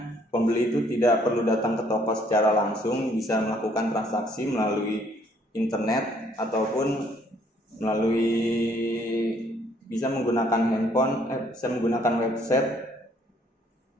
pembeli itu tidak perlu datang ke toko secara langsung, bisa melakukan transaksi melalui internet ataupun bisa menggunakan handphone, bisa menggunakan website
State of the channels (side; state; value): both; normal; correlation 0.64